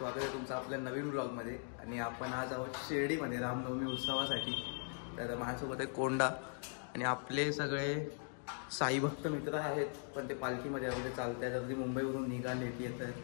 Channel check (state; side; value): silent; right; 51 dB below the other